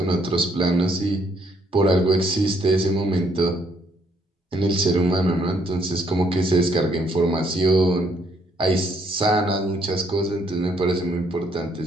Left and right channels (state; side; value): normal; both; correlation 0.69